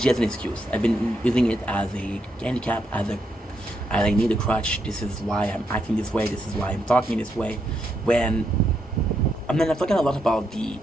as an excuse. I've been using it as a handicap, as I need a crutch. This is why I'm acting this way. This is why I'm talking this way. I'm talking a lot about the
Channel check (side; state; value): both; normal; correlation 0.80